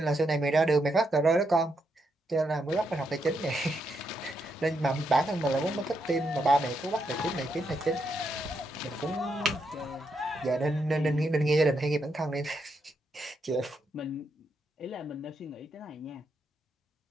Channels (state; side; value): normal; both; correlation 0.80